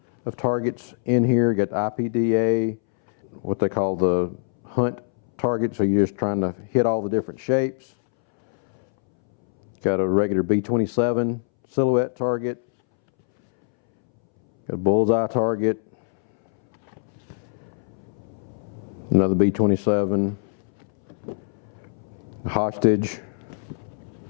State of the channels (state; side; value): silent; right; 63 dB below the other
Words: of targets in here. You got the IPDA, what they call the hunt target, so you're just trying to hit all the different shapes. Got a regular B27 silhouette target, got a bullseye target, another B27, hostage,